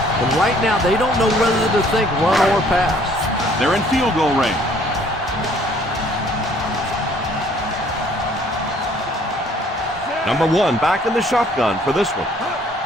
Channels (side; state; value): both; normal; correlation 0.59